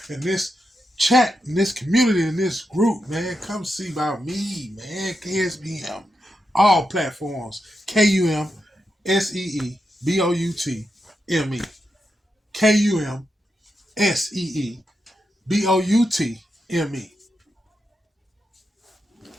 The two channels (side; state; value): both; normal; correlation 0.86